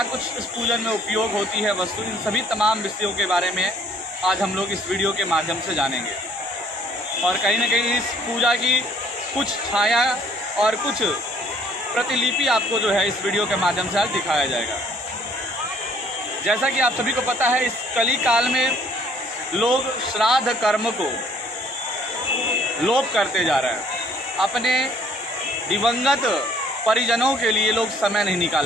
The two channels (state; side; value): normal; both; correlation 0.60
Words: कुछ इस पूजन में उपयोग होती है वस्तु, इन सभी तमाम विषयों के बारे में आज हम लोग इस वीडियो के माध्यम से जानेंगे। और कहीं ना कहीं इस पूजा की कुछ छाया और कुछ प्रतिलिपि आपको जो है इस वीडियो के माध्यम से आज दिखाया जाएगा। जैसा कि आप सभी को पता है, इस कली काल में लोग श्राद्ध कर्म को लोप करते जा रहे हैं। अपने दिवंगत परिजनों के लिए लोग समय नहीं